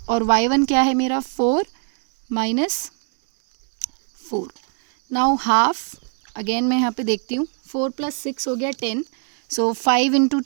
और y1 क्या है मेरा 4 -4। नाउ हाफ अगेन मैं यहाँ पे देखती हूँ, 4 + 6 हो गया 10, सो 5 ×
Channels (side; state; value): left; quieter; 39.1 dB